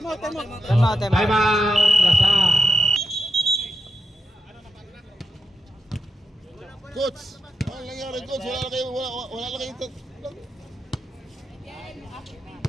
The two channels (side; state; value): both; normal; correlation 0.86